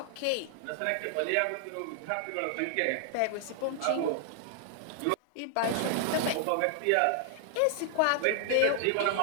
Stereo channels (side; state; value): both; different; correlation 0.00